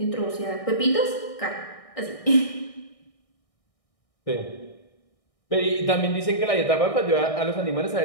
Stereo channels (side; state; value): right; late; 1.6 ms